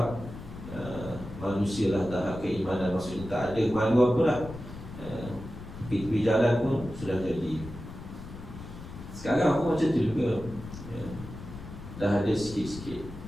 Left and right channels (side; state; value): left; noise; rumble, 12 dB below the sound